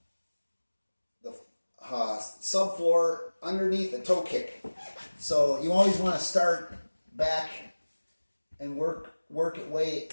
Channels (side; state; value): both; inverted; correlation -1.00